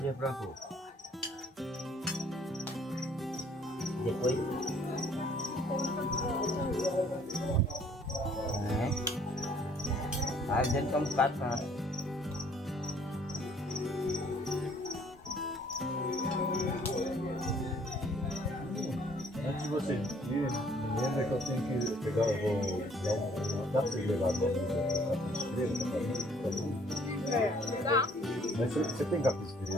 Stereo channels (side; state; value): both; normal; correlation 0.60